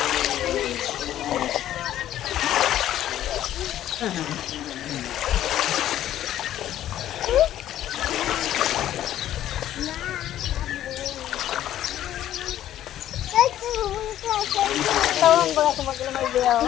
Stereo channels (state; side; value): quieter; right; 12.2 dB